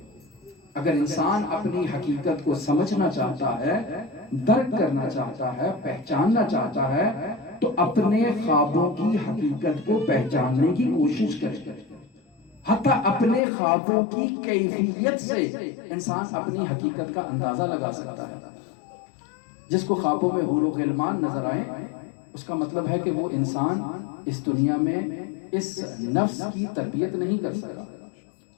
اگر انسان اپنی حقیقت کو سمجھنا چاہتا ہے، درک کرنا چاہتا ہے، پہچاننا چاہتا ہے تو اپنے خوابوں کی حقیقت کو پہچاننے کی کوشش کرے۔ حتیٰ اپنے خوابوں کی کیفیت سے انسان اپنی حقیقت کا اندازہ لگا سکتا ہے۔ جس کو خوابوں میں حور و غلمان نظر آئیں، اس کا مطلب ہے کہ وہ انسان اس دنیا میں اس نفس کی تربیت نہیں کر سکا،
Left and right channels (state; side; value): drops out; right; at 13.4 s